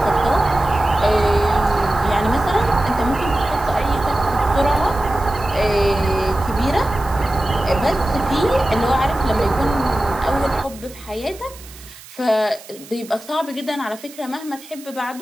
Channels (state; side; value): noise; right; hiss, 19 dB below the sound